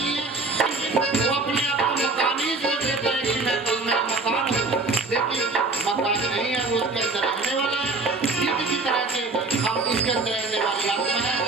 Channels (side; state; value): left; quieter; 3.7 dB